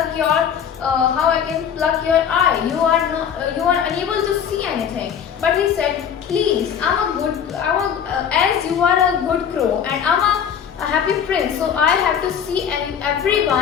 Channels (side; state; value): right; quieter; 8.0 dB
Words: your eye? You are unable to see anything. But he said, please, as you are a good crow and I'm a happy prince, so I have to see